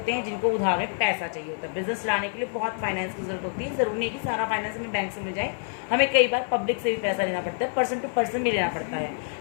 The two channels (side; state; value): right; silent; digital silence